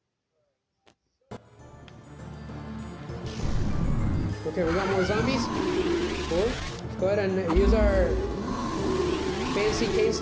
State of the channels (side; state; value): both; identical; correlation 1.00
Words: Okay, we got more zombies. Cool. Let's go ahead and use our fancy cane